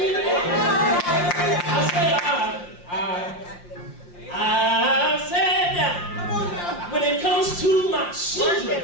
there. I said that when it comes to my children,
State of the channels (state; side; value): late; right; 5.7 ms